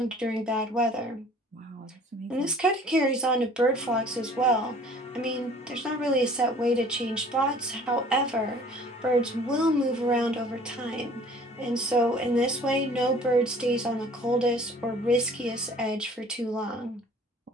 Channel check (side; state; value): both; normal; correlation 0.51